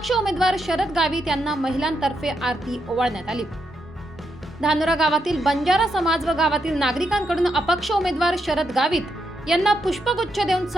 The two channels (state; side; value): normal; both; correlation 0.81